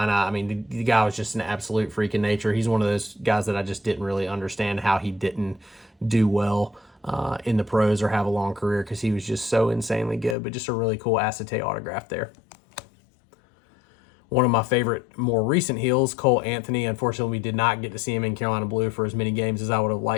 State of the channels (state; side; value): drops out; right; at 10.4 s